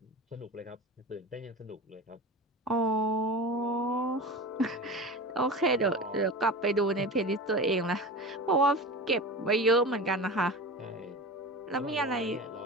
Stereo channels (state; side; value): normal; both; correlation 0.30